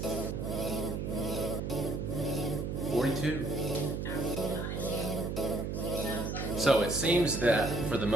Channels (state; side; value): noise; right; hum, 3 dB below the sound